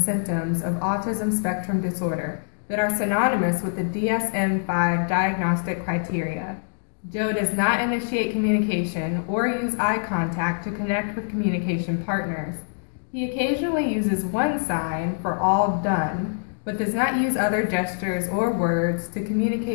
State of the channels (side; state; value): right; silent; digital silence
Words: of autism spectrum disorder that are synonymous with the DSM-5 diagnostic criteria. Joe does not initiate communication or use eye contact to connect with communication partners. He occasionally uses one sign for all done, but does not use other gestures or words to